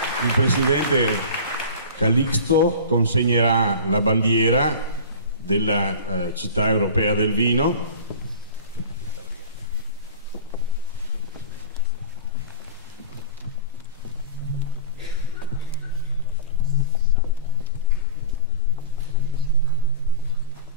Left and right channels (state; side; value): inverted; both; correlation -0.36